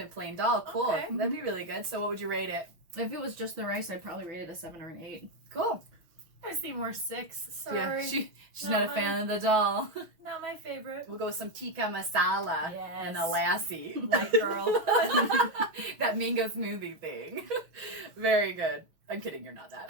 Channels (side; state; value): left; late; 6.1 ms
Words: plain dal. Cool. Okay. That'd be really good. So what would you rate it? If it was just the rice, I'd probably rate it a 7 or an 8. Cool. I see more 6. Sorry. Yeah, she's Not not a fan of the dal. Not my favorite. We'll go with some tikka masala and a lassi. White girl. That mango smoothie thing. Very good. I'm kidding, you're not